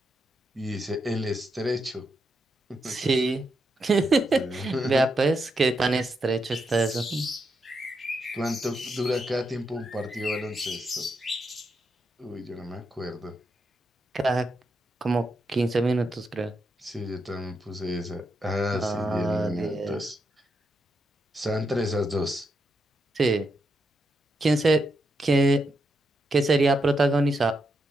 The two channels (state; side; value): normal; both; correlation 0.82